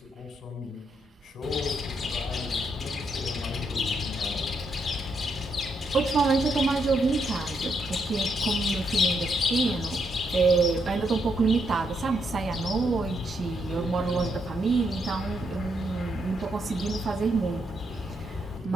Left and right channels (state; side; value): normal; both; correlation 0.78